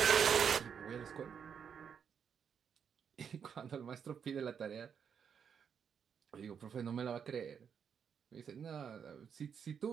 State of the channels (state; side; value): quieter; left; 7.3 dB